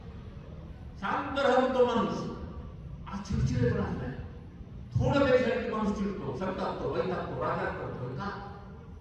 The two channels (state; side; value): identical; both; correlation 1.00